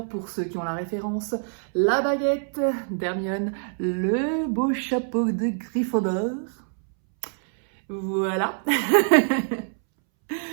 pour ceux qui ont la référence. La baguette d'Hermione, le beau chapeau de Gryffondor. Voilà!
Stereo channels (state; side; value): silent; left; 62 dB below the other